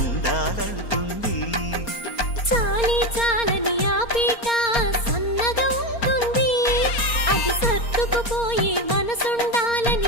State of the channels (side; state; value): right; late; 4.3 ms